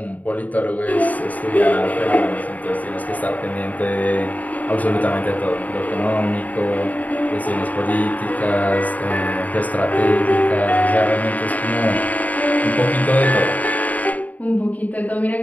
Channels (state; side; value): late; right; 0.075 ms